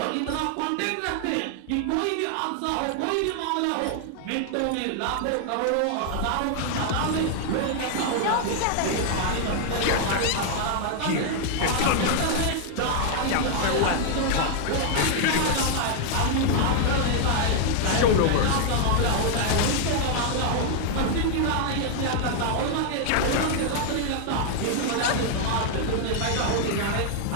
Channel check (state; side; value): different; both; correlation 0.00